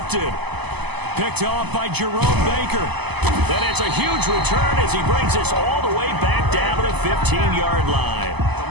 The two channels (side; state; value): left; late; 0.99 ms